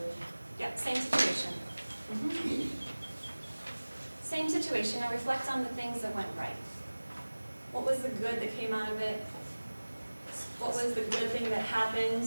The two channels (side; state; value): both; inverted; correlation -1.00